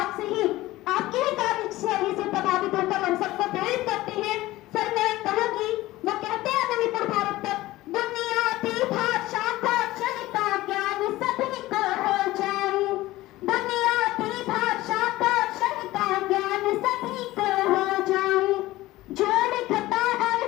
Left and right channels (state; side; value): quieter; right; 17.5 dB